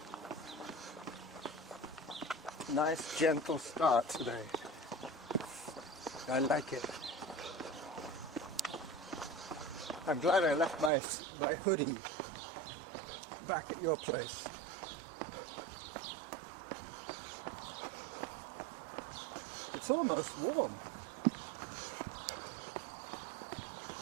Nice, gentle start today. I like it. I'm glad I left my hoodie back at your place. It's almost warm.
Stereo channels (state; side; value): drops out; left; at 10.9 s